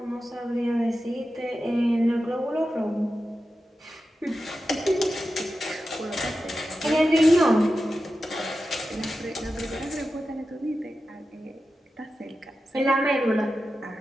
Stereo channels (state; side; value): normal; both; correlation 0.92